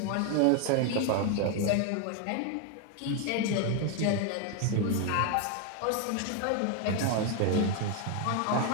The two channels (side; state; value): both; different; correlation 0.01